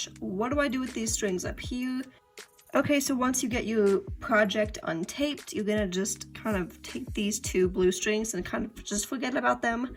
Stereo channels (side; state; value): both; identical; correlation 1.00